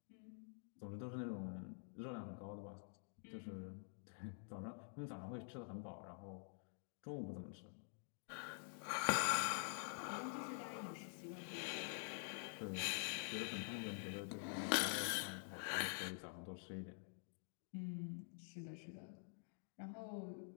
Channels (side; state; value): right; silent; digital silence